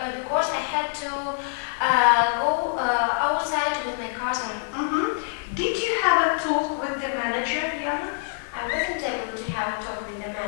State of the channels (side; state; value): right; silent; 61 dB below the other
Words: because I had to go outside with my cousin. Mm-hmm. Did you have a talk with the manager, Yana? I wasn't able to have a talk with the